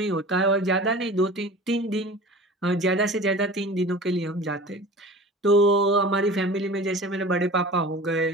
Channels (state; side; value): normal; both; correlation 0.39